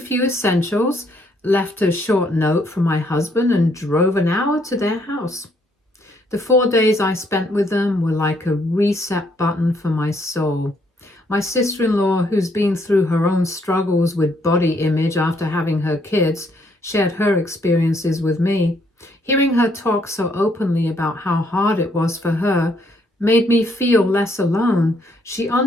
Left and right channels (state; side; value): normal; both; correlation 0.70